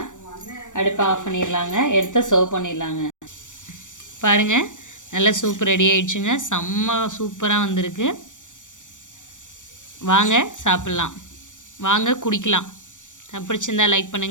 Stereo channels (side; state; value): right; late; 0.86 ms